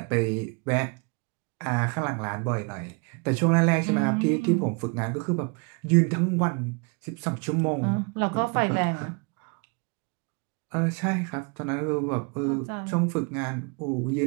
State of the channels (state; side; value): quieter; left; 32.9 dB